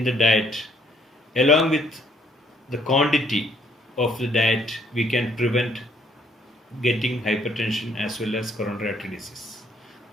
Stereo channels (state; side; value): normal; both; correlation 0.65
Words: the diet along with the quantity of the diet, we can prevent getting hypertension as well as coronary artery disease.